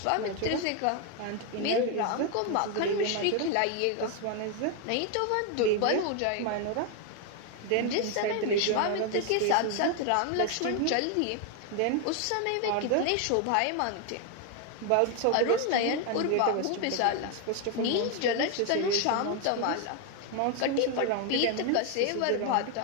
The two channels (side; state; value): both; different; correlation 0.01